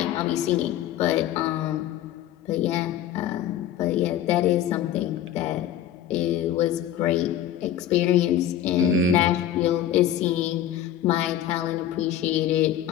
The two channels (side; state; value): right; quieter; 10.8 dB